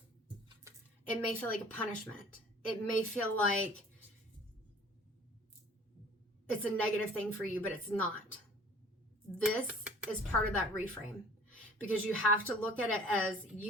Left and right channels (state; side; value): normal; both; correlation 0.49